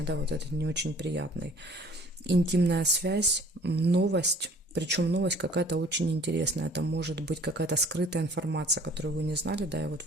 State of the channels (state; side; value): normal; both; correlation 0.53